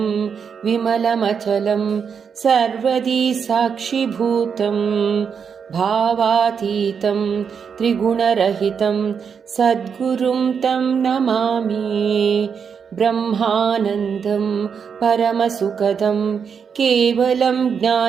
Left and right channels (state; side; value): quieter; left; 6.6 dB